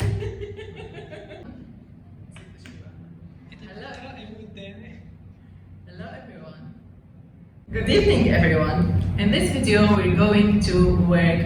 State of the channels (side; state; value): both; identical; correlation 1.00